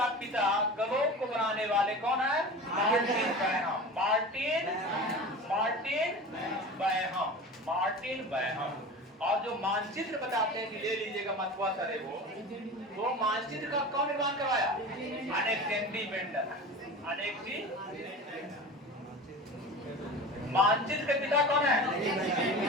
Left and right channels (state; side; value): normal; both; correlation 0.33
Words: पिता, ग्लोब को बनाने वाले कौन है? मार्टिन बैहम। और जो मानचित्र बताते हैं कि ले लीजिएगा मतवा सर है वो मानचित्र का कौन निर्माण करवाया? Alexander Mendel. मानचित्र के पिता कौन है?